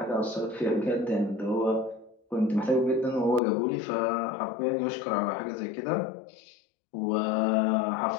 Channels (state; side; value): drops out; right; at 3.4 s